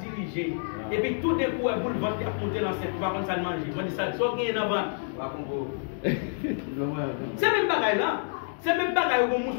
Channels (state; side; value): silent; right; digital silence